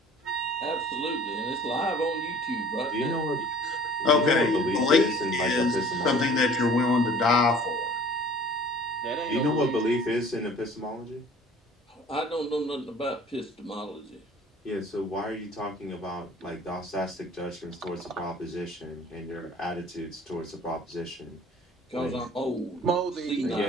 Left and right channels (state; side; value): normal; both; correlation 0.50